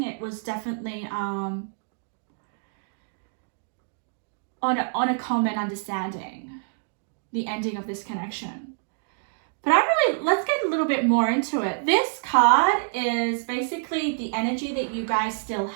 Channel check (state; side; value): silent; left; digital silence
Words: it was definitely on a common understanding, the ending of this connection. But let's get a little bit more into it. This card is basically the energy that you guys still